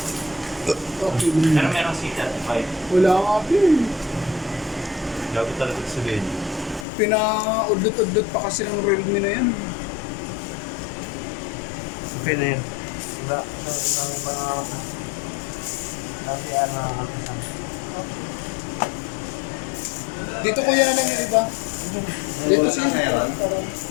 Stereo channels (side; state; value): right; drops out; at 6.9 s